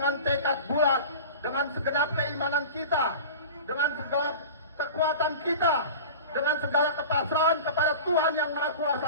tekad bulat, dengan segenap keimanan kita, dengan segala kekuatan kita, dengan segala kepasrahan kepada Tuhan Yang Maha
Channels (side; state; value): both; inverted; correlation -0.36